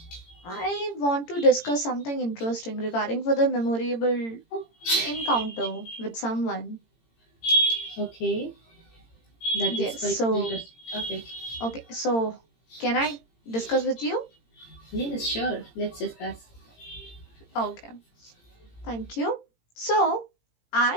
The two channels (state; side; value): late; right; 18 ms